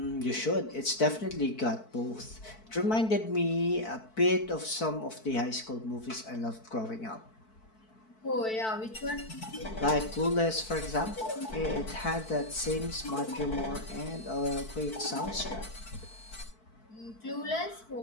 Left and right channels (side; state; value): right; late; 4.5 ms